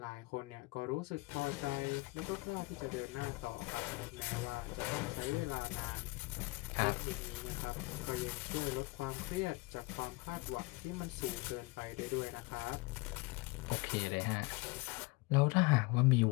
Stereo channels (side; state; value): right; quieter; 24.3 dB